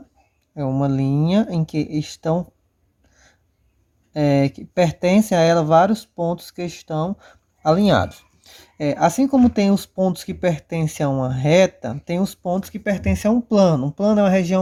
é uma linha em que estão que pertencem a ela vários pontos que estão alinhados. Assim como tem os pontos que pertencem a uma reta, tem os pontos que pertencem a um plano. Um plano é uma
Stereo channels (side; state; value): both; identical; correlation 1.00